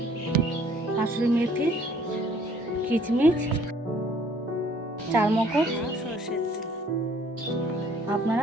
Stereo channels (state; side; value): normal; both; correlation 0.59